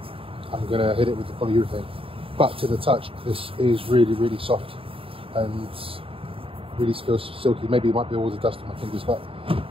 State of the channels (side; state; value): left; late; 0.27 ms